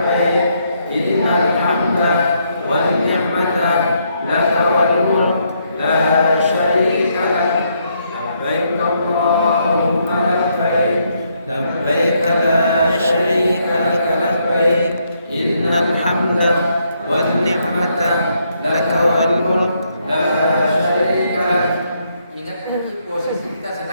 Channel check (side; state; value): both; inverted; correlation -0.75